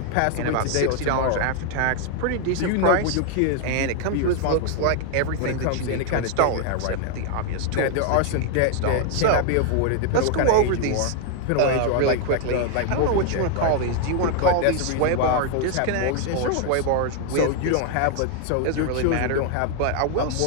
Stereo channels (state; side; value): different; both; correlation 0.00